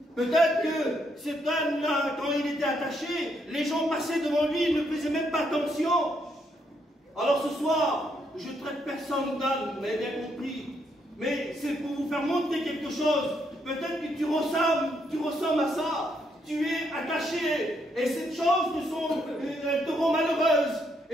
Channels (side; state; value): both; normal; correlation 0.75